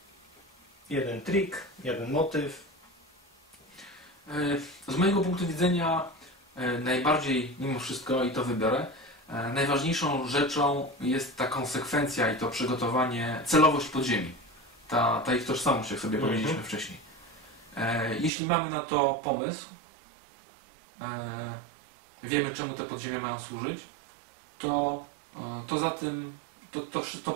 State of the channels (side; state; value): left; drops out; at 18.3 s